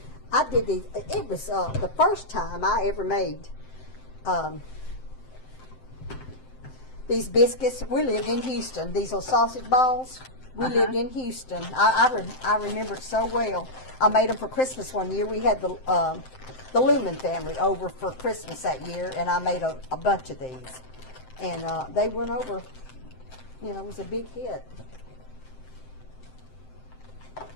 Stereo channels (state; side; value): late; right; 7.7 ms